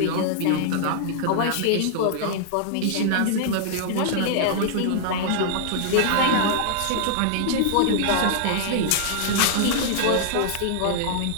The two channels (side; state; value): both; different; correlation -0.01